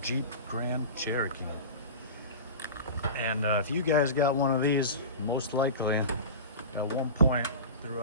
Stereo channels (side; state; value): both; inverted; correlation -0.31